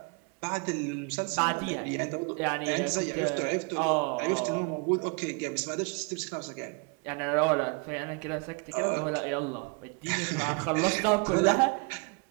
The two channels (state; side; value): quieter; left; 33.1 dB